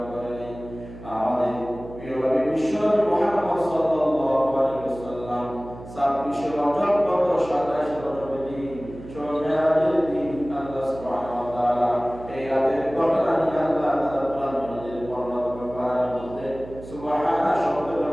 করেন। আমাদের প্রিয় নবী বিশ্বনবী মুহাম্মদ সাল্লাল্লাহু আলাইহি ওয়াসাল্লাম 26 রজব গত 27 রজবের দিন মেরাজের দিন আল্লাহ সুবহানাহু ওয়া তাআলা এই রাতের ঘটনা নিয়ে আল্লাহ তাআলা কোরআন মাজিদের বর্ণনা করার মধ্যে সুবহানাহু শব্দ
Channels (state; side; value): noise; right; hum, 15 dB below the sound